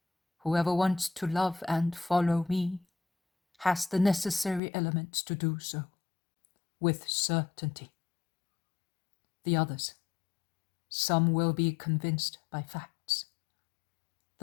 whoever wants to love and follow me has the necessary elements to do so, with certainty. The others, some will be convinced by facts.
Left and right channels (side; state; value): right; drops out; at 4.6 s